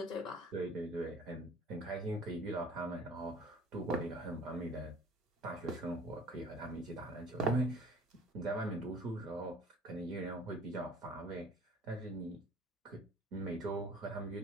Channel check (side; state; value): both; normal; correlation 0.49